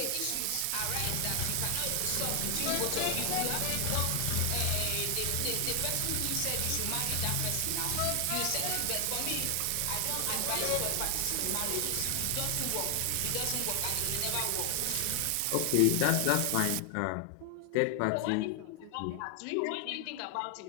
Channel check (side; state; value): both; different; correlation 0.00